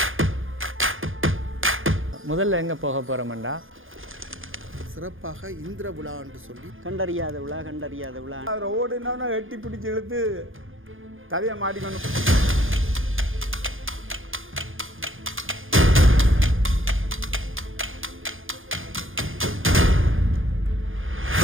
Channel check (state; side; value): late; left; 0.59 ms